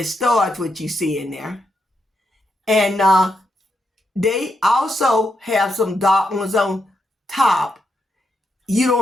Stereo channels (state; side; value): normal; both; correlation 0.83